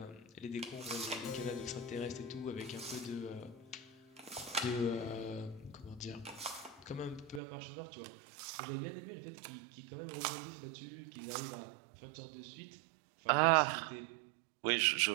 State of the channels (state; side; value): drops out; left; at 7.4 s